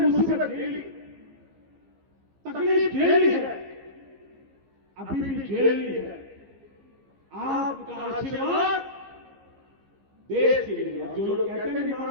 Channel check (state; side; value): late; left; 15 ms